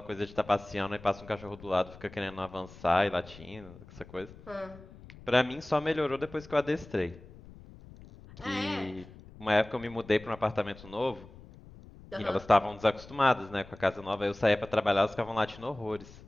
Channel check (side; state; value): left; noise; rumble, 19 dB below the sound